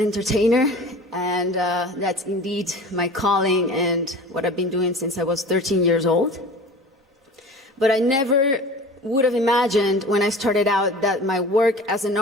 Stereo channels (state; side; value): normal; both; correlation 0.39